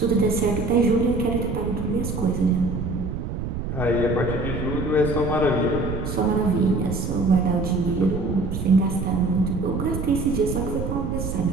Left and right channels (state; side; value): noise; right; rumble, 4 dB below the sound